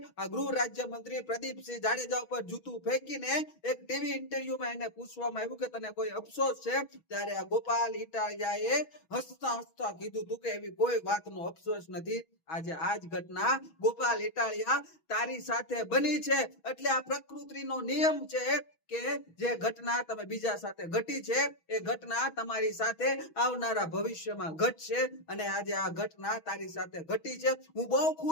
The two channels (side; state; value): right; late; 6.2 ms